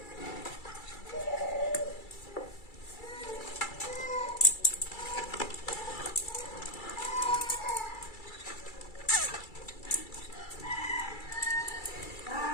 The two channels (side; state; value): right; late; 2.3 ms